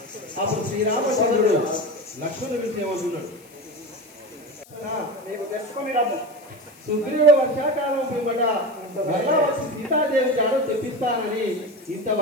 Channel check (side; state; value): left; noise; hiss, 25 dB below the sound